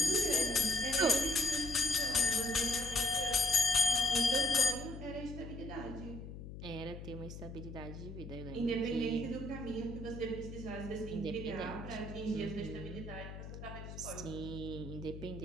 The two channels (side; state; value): left; noise; hum, 11 dB below the sound